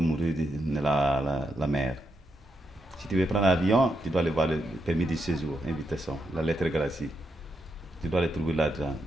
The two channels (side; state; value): both; normal; correlation 0.83